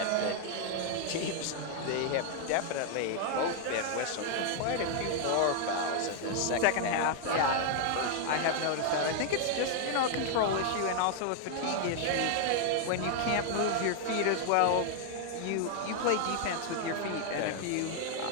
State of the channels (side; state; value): both; different; correlation 0.00